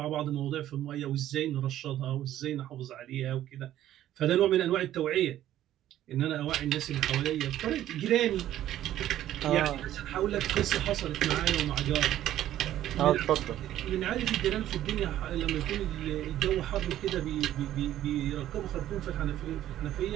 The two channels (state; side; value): quieter; left; 12.7 dB